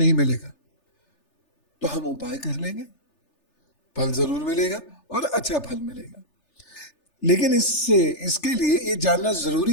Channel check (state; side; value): late; right; 3.4 ms